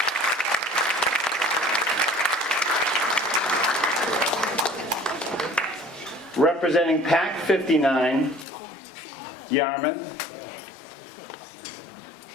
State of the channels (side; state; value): right; drops out; at 8.5 s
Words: Representing Pack 59, Yarmouth.